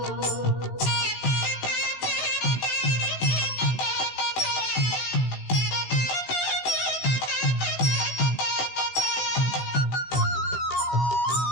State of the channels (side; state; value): right; late; 16 ms